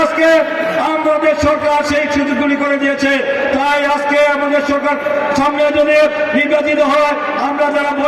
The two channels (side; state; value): both; identical; correlation 1.00